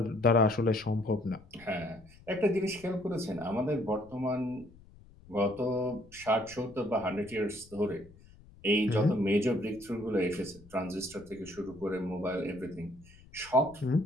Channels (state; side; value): noise; left; rumble, 23 dB below the sound